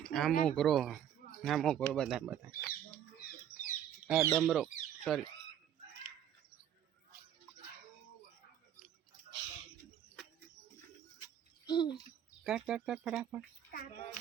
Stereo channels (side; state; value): left; quieter; 10.1 dB